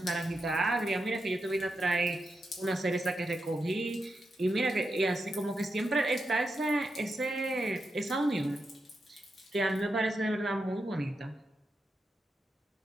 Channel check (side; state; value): both; normal; correlation 0.87